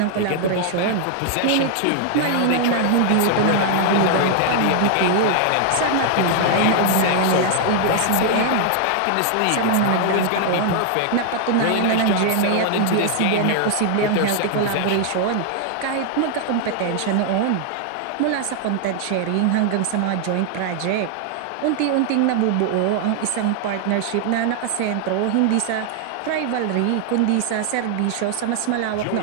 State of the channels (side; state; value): both; different; correlation 0.00